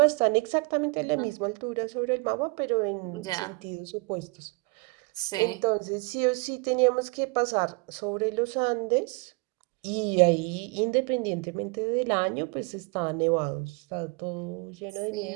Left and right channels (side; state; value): left; quieter; 29.5 dB